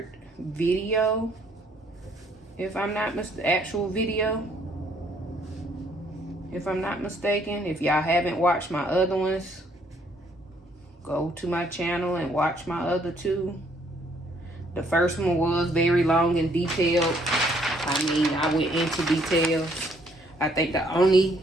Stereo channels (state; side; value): normal; both; correlation 0.66